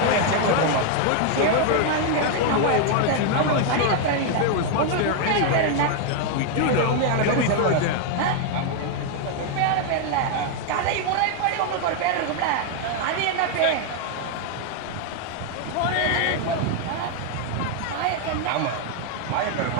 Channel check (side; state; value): both; different; correlation 0.00